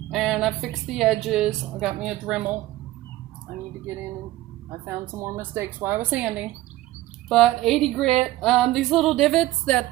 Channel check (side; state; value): left; quieter; 16.6 dB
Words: and I fixed the edges. I got me a Dremel. I need to get in and I found some more mistakes while I was sanding. But 80 grit, these little divots